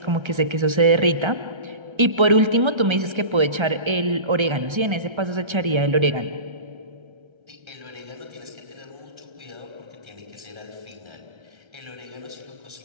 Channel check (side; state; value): left; late; 1.3 ms